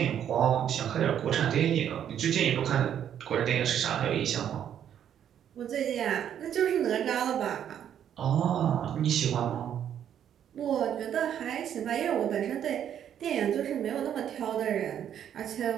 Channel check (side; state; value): left; quieter; 9.6 dB